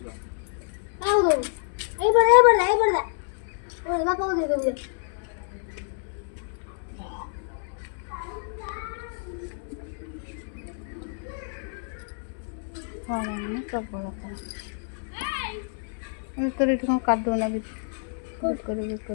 ତୋର ଏଠି କଣ କାଦୁଅ ଲାଗିଛି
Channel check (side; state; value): right; silent; digital silence